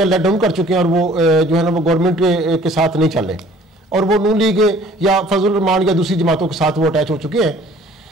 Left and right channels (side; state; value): both; normal; correlation 0.53